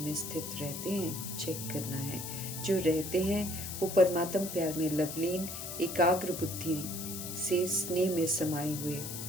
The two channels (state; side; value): noise; left; hiss, 7 dB below the sound